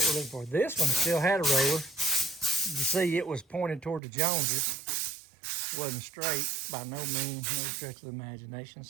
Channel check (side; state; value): left; drops out; at 4.0 s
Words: we're looking for. This one still had a roller. You see it was pointed toward the Joneses. It wasn't straight by no means, no stretch of the imagination,